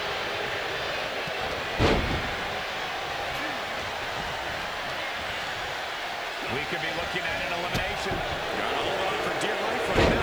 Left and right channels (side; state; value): left; noise; hiss, 22 dB below the sound